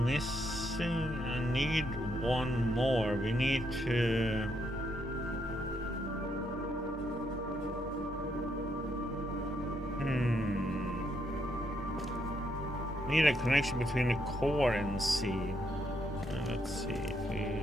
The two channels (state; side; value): normal; both; correlation 0.76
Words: missing. I need one more. We need to. Need a connection between the core and C. Let's see if